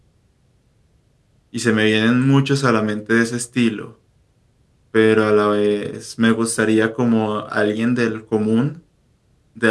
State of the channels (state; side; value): identical; both; correlation 1.00